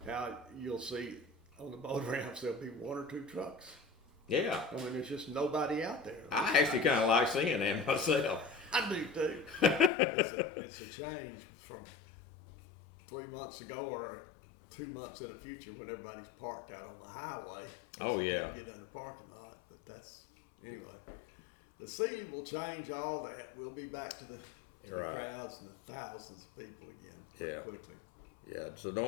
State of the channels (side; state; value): right; drops out; at 9.9 s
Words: how you'll see on the boat ramps there'll be one or two trucks. Yeah. I mean, there's just nobody out there. I actually kind of like seeing that myself. I do too. It's a change from 3 months ago or 2 months in the future when everybody's parked out on the highway. Oh yeah. Get in the parking lot, but anyway. The sea will change all that. We'll be back to the crowds and the thousands of people again pretty quickly. Yeah. So